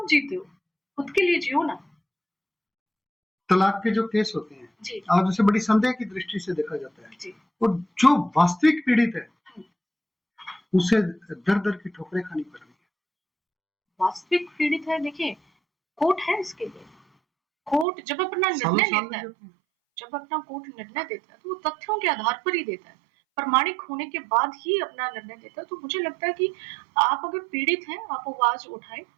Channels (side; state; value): left; drops out; at 17.9 s